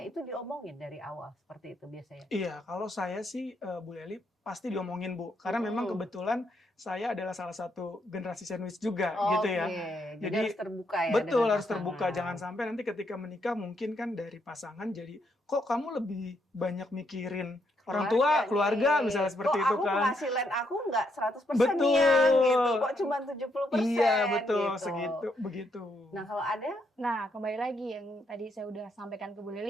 itu diomongin dari awal seperti itu biasanya. Iya, kalau saya sih Bu Leli pasti diomongin Bu, karena memang kebetulan saya adalah salah satu generasi sandwich juga gitu ya. Jadi Jadi, harus terbuka ya. Betul, dengan harus terbuka. pasangan. Jangan sampai nanti ketika menikah mungkin kan dari pasangan jadi kok kamu lebih banyak mikirin orang tua, keluarga nih. misalnya seperti Kok itu aku kan. penghasilan aku nggak 100% Betul. yang gitu. Kok cuma 70%. Iya, betul, gitu. segitu begitu. Nah, kalau ada Nah, kembali lagi yang tadi saya udah sampaikan ke Bu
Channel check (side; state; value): both; normal; correlation 0.76